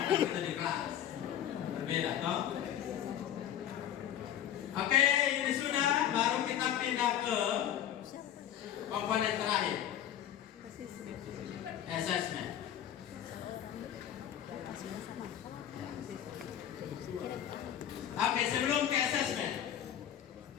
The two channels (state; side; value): quieter; right; 10.6 dB